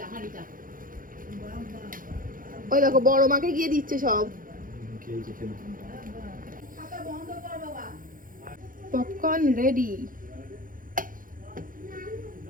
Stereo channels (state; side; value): late; left; 0.40 ms